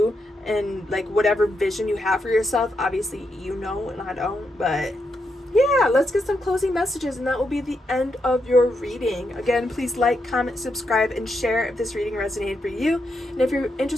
and like whatever vision you have for yourself. Obviously, you know, and I don't, but yeah, let's get some closing messages, and that will be the end of your reading. Again, please like, comment, subscribe, and share if this reading resonated for you. And if you're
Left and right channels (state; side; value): normal; both; correlation 0.82